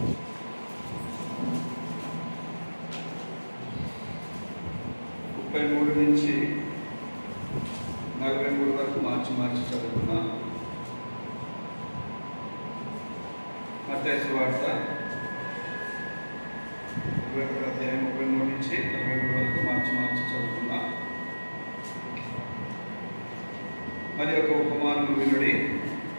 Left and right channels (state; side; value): inverted; both; correlation -1.00